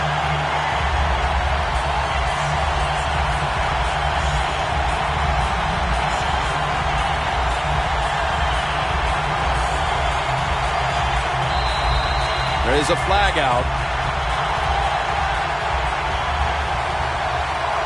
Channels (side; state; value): both; identical; correlation 1.00